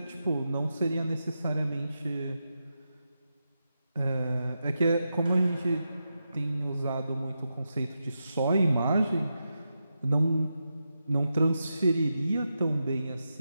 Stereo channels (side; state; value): both; inverted; correlation -0.88